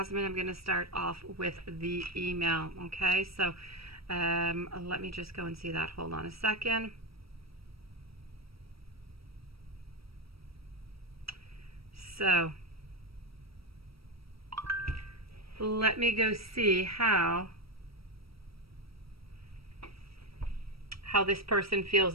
I'm going to start off with the email. Okay, so let me just go and see that. Hold on a second. So let me go see how this person feels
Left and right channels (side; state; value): left; late; 0.76 ms